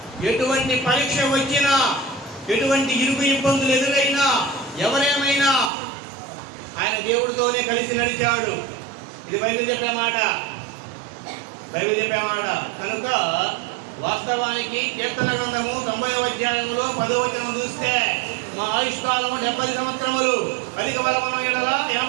ఎటువంటి పరీక్ష వచ్చినా, ఎటువంటి ఇరుకు ఇబ్బందులు ఎదురైనా, ఎవరేమైనా ఆయన దేవుడితోనే కలిసి నడిచాడు. ఇది బైబిల్ చెప్పే మాట. కనుక వాస్తవానికి కీర్తన గ్రంథము 90వ అధ్యాయంలో 10వ వచనం చూస్తే, మా ఆయుష్కాలము 70 సంవత్సరములు, అధిక బలమున ఎడల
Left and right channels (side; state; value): left; drops out; at 5.7 s